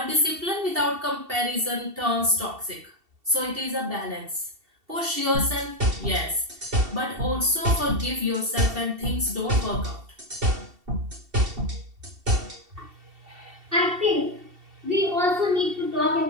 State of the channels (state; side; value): late; left; 2.7 ms